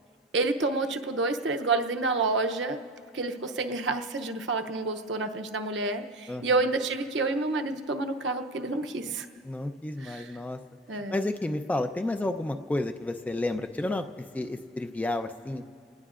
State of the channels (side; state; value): both; normal; correlation 0.33